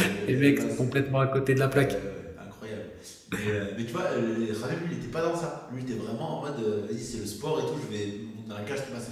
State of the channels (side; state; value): both; identical; correlation 1.00